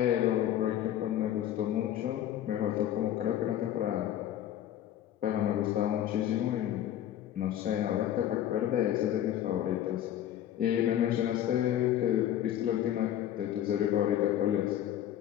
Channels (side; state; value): right; quieter; 11.5 dB